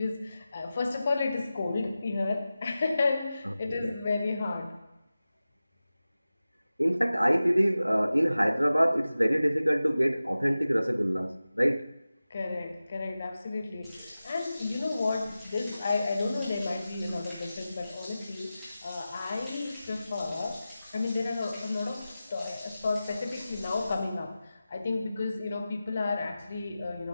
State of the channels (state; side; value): inverted; both; correlation -0.95